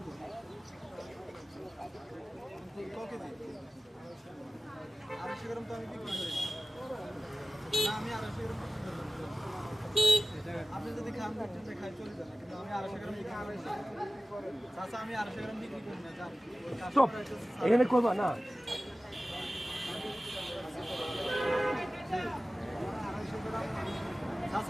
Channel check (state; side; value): normal; both; correlation 0.96